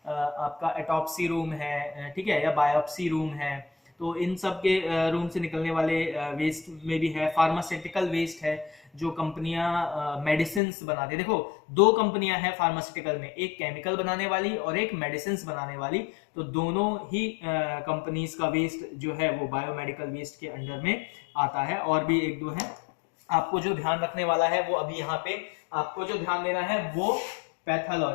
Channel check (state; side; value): drops out; right; at 10.6 s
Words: आपका एटॉप्सी रूम है, ठीक है, या बायोप्सी रूम है, तो इन सब के रूम से निकलने वाले वेस्ट में भी है। फार्मास्यूटिकल वेस्ट है, जो कंपनियां मेडिसिन बनाती है, देखो 2 कंपनियां हैं फार्मास्यूटिकल में, एक केमिकल बनाने वाली और एक मेडिसिन बनाने वाली, तो दोनों ही कंपनीज का वेस्ट जो है वो बायोमेडिकल वेस्ट के अंडर में आता है। और भी 1-2 है, आपको जो ध्यान रखने वाला है वो अभी यहाँ पे आपको जो ध्यान देना है वो